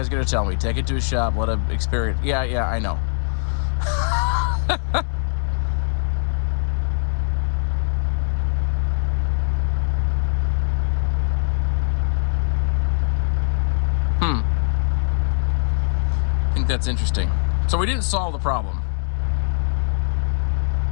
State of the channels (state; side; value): silent; right; digital silence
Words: are gonna tell me, take it to a shop, let it experience. Yeah, I know. I think that's interesting. So we didn't solve the problem.